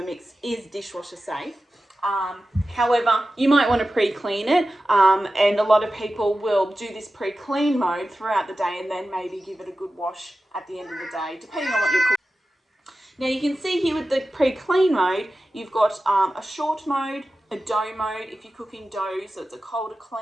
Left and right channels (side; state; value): both; normal; correlation 0.94